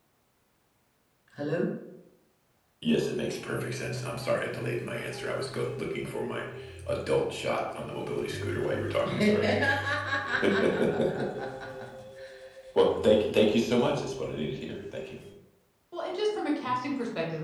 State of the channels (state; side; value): identical; both; correlation 1.00